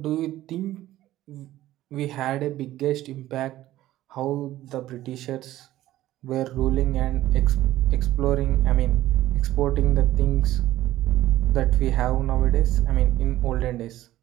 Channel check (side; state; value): left; quieter; 14.8 dB